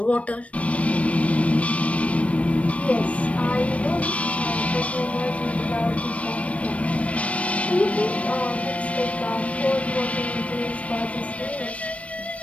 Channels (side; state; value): right; late; 0.064 ms